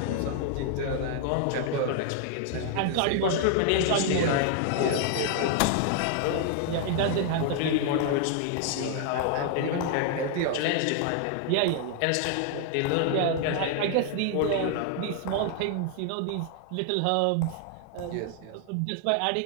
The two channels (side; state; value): both; different; correlation 0.00